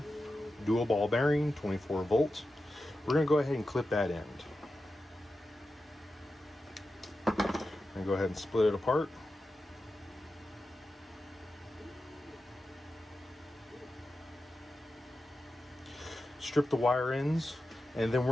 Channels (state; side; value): normal; both; correlation 0.91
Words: dual ball bearing, 24 volts. We're going to go ahead and clip that end. And go ahead and split it apart. Strip the wire ends, and then